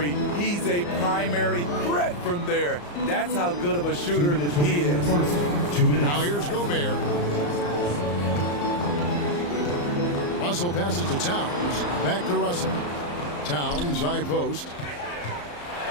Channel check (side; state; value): right; late; 34 ms